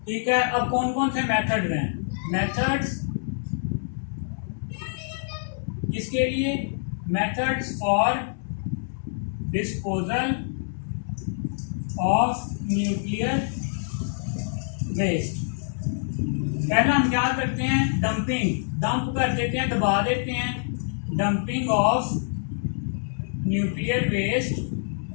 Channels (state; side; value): silent; right; digital silence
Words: ठीक है, अब कौन कौन से मेथड हैं? मेथड्स किसके लिए? Methods for disposal of nuclear waste. पहला हम क्या करते हैं? डंप कर देते हैं, दबा देते हैं। डंपिंग ऑफ न्यूक्लियर वेस्ट